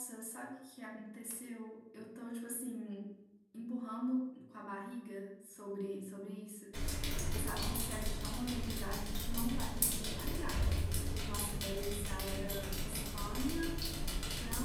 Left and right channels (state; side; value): identical; both; correlation 1.00